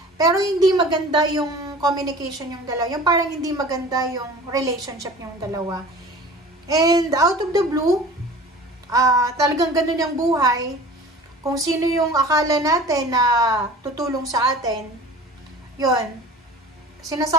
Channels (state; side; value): normal; both; correlation 0.42